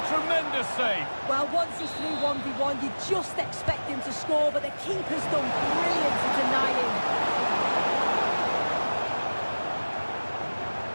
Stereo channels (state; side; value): inverted; both; correlation -1.00